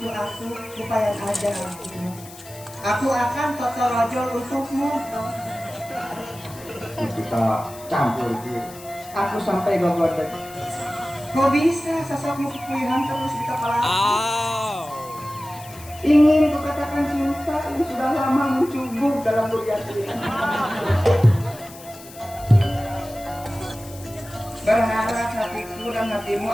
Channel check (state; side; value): noise; left; hiss, 18 dB below the sound